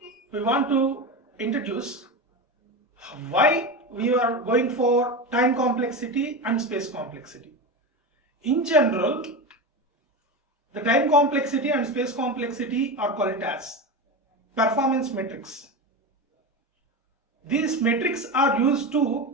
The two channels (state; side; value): normal; both; correlation 0.21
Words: we want to introduce why we are going for time complexity and space complexity. In general, the time complexity and space complexity are called as performance metrics. These metrics are used